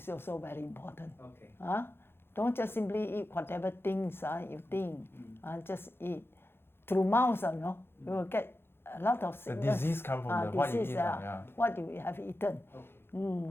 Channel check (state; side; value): late; right; 0.11 ms